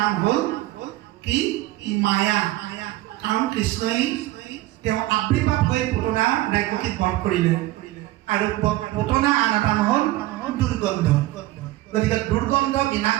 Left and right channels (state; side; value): quieter; left; 16.8 dB